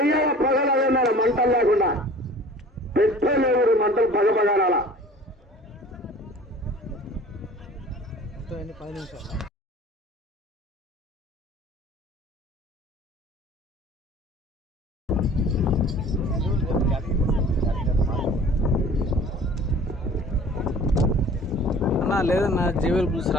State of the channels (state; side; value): normal; both; correlation 0.46